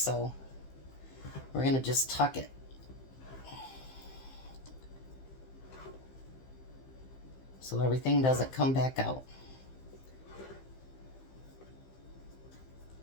we're going to just tuck it. So everything doesn't come back out.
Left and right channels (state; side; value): late; right; 15 ms